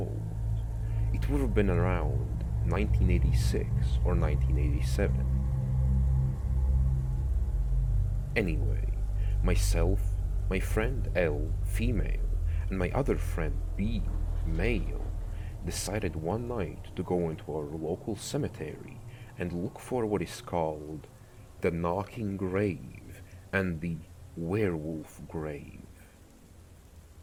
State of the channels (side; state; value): both; identical; correlation 1.00